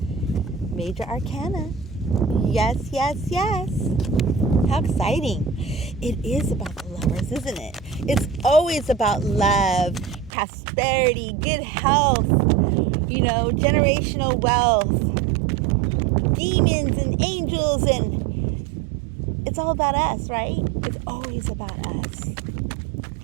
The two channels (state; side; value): drops out; left; at 10.3 s